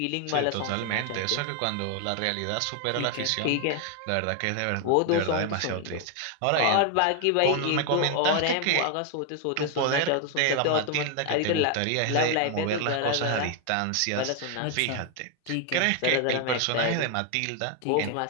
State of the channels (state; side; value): different; both; correlation 0.01